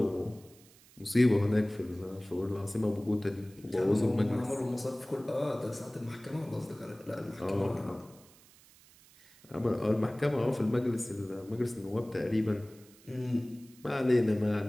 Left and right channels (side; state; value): right; noise; hiss, 25 dB below the sound